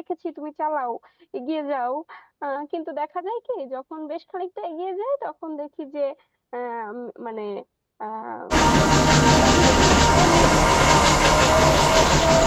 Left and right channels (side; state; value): both; identical; correlation 1.00